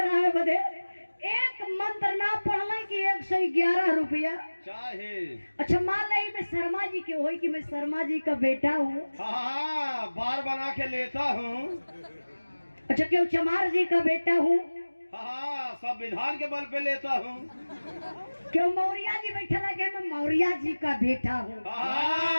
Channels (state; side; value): inverted; both; correlation -1.00